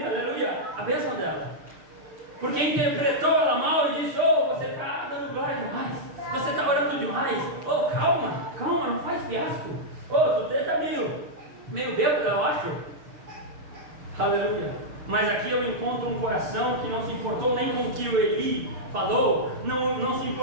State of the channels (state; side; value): late; left; 6.6 ms